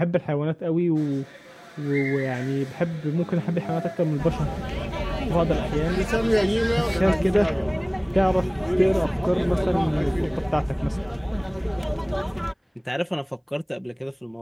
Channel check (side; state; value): both; identical; correlation 1.00